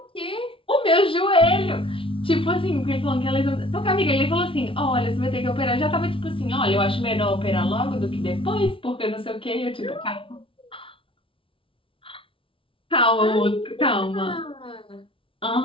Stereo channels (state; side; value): late; right; 0.26 ms